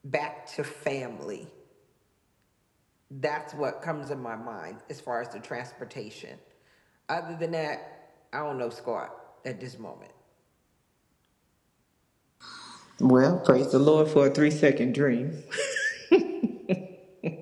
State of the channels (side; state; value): both; identical; correlation 1.00